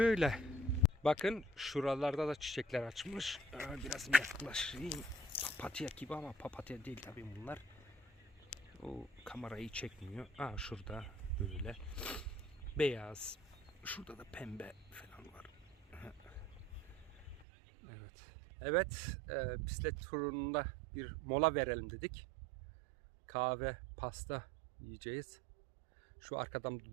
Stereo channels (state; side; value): drops out; left; at 17.4 s